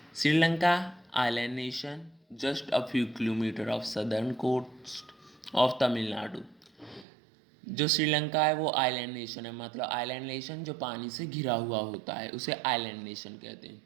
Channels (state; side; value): drops out; left; at 7.1 s